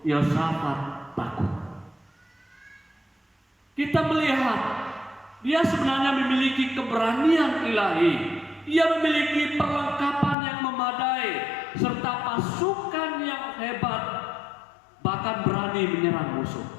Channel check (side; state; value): right; drops out; at 10.4 s